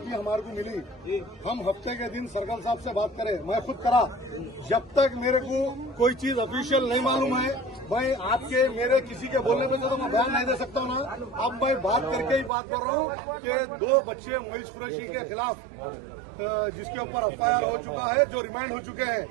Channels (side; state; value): left; drops out; at 12.5 s